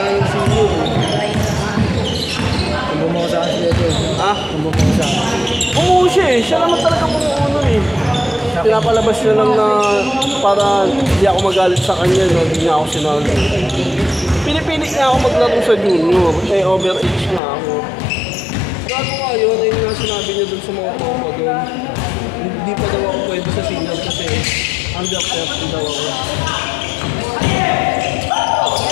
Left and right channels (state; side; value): drops out; right; at 17.4 s